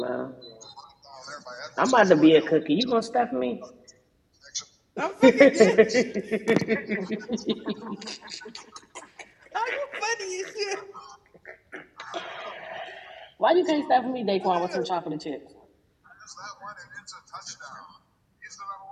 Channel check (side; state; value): both; identical; correlation 1.00